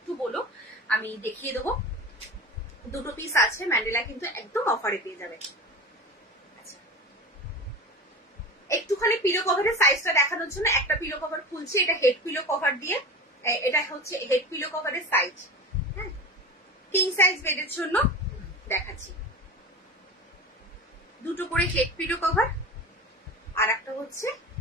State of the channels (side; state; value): both; normal; correlation 0.31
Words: বলো, আমি দেখিয়ে দেবো। 2 পিস আছে ম্যান্ডেলা, কিন্তু একদম অফারে পেয়ে যাবে। আচ্ছা, একটুখানি পিলো কভারের সাইজটা দেখানোর জন্য একটা পিলো কভার খুলছি। এটা হেড পিলো কভার দিয়ে, এটা হচ্ছে হেড পিলো কভারের সাইজ। হ্যাঁ, কিং সাইজ বেডের জন্য দেখাচ্ছি। 2 করে হেড পিলো কভার, আর একটা হচ্ছে